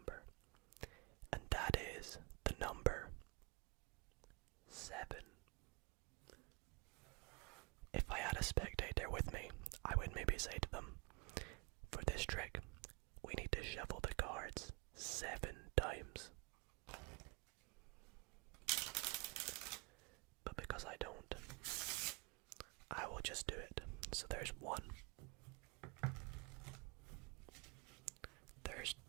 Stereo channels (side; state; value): left; quieter; 30.2 dB